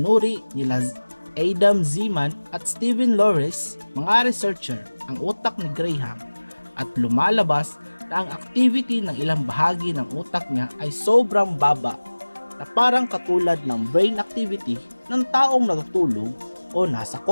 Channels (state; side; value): inverted; both; correlation -1.00